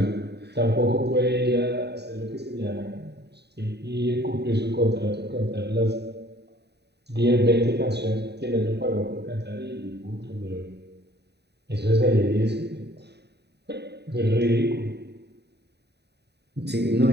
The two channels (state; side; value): late; left; 0.48 ms